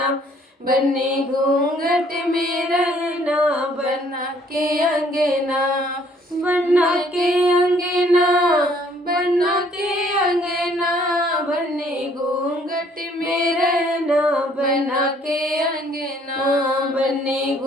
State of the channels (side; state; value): both; normal; correlation 0.62